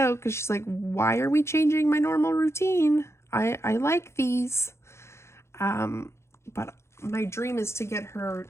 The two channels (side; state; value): right; late; 0.13 ms